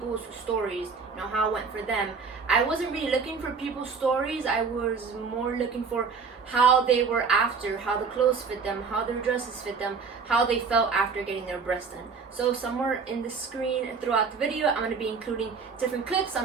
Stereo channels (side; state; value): left; quieter; 5.2 dB